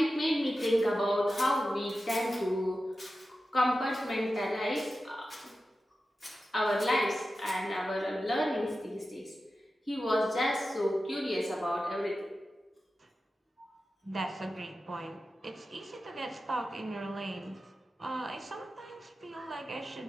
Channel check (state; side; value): normal; both; correlation 0.93